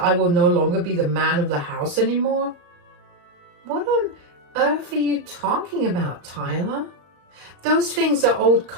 I will no longer be the man of the house anymore?" "What on earth are you talking about, Tyler? Those things are old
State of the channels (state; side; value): late; left; 34 ms